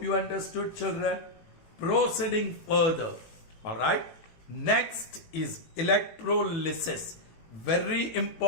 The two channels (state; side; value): late; right; 18 ms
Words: you understood, children. Proceeding further. Alright. Next is electrolysis. Very